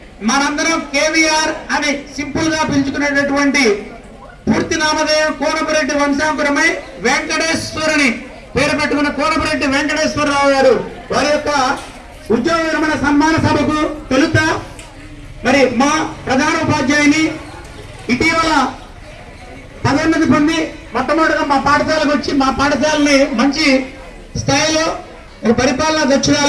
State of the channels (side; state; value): both; identical; correlation 1.00